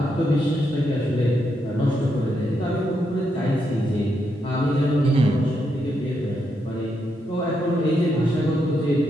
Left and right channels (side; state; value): both; normal; correlation 0.81